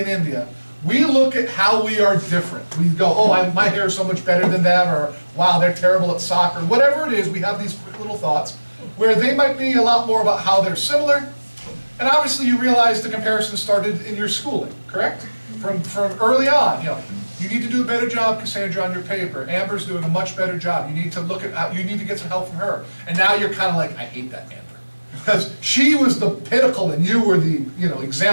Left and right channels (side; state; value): both; inverted; correlation -1.00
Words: India. We look at how we are different. We go, oh, my hair is so much better than them, or wow, they're terrible at soccer. Whatever it is, we have these quick little thoughts where they might be a lot more about how they're similar. And obviously you realize the comparison started in your schooling, correct? From early on, you know, you need to do a better job, Cassandra, on your paper. Amber's doing a much better job. You need to look at how, you need to get some help from her. And now you're kind of like, I hate that Amber. Because she was the pinnacle and you were the, you know,